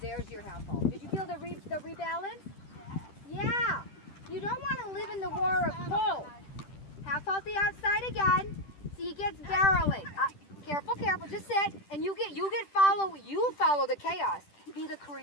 There's your half halt. Did you feel the rebalance? Yeah. You don't want to live in the war of pull. Half halt the outside again. See, he gets barreling. Careful, careful. Just sit, and you follow. You follow the chaos. Be the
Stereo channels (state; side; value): late; right; 10 ms